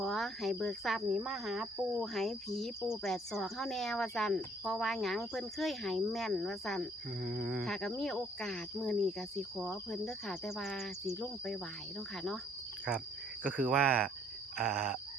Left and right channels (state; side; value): normal; both; correlation 0.63